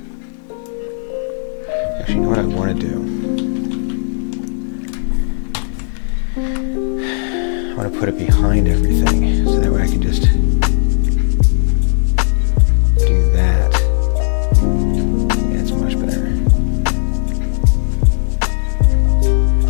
Actually, you know what I want to do? I want to put it behind everything, so that way I can just do that. Yeah, it's much better.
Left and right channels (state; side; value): silent; right; digital silence